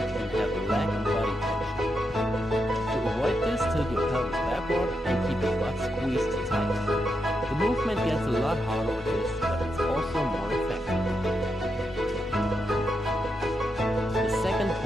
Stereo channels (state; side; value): normal; both; correlation 0.84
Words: and have a lack of body tension. To avoid this, tilt your pelvis backward and keep your butt squeezed tight. The movement gets a lot harder with this, but it's also more effective. The second